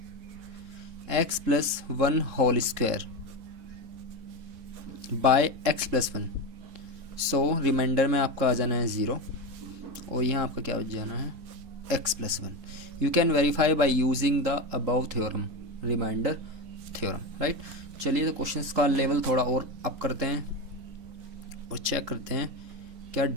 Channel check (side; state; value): left; late; 3.7 ms